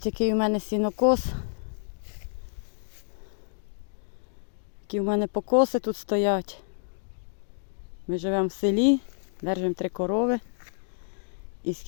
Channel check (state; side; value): silent; right; digital silence